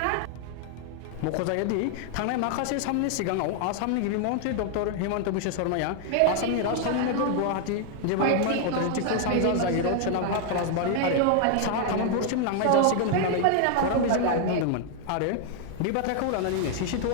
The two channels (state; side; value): different; both; correlation 0.00